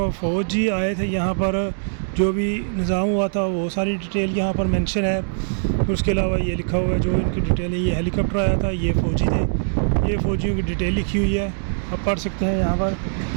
फ़ौजी आए थे यहाँ पर, जो भी निज़ाम हुआ था वो सारी डिटेल यहाँ पर मेंशन है। उसके अलावा ये लिखा हुआ है जो इनकी डिटेल है। ये हेलीकॉप्टर आया था, ये फ़ौजी थे, ये फ़ौजियों की डिटेल लिखी हुई है, आप पढ़ सकते हैं यहाँ पर।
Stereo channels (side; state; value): left; silent; digital silence